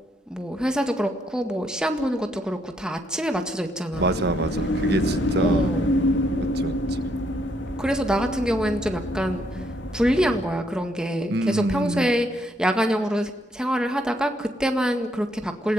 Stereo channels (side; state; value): both; normal; correlation 0.73